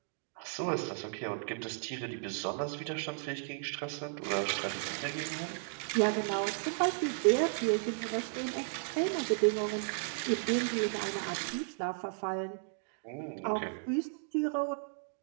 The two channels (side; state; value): left; silent; digital silence